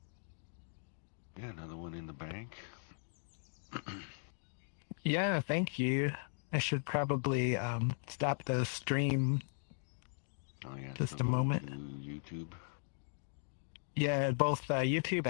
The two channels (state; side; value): silent; right; digital silence